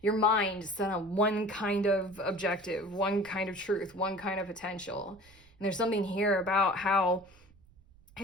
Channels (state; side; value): noise; right; rumble, 27 dB below the sound